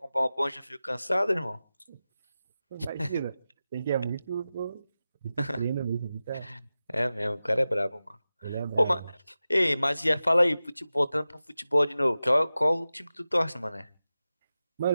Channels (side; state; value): both; inverted; correlation -0.94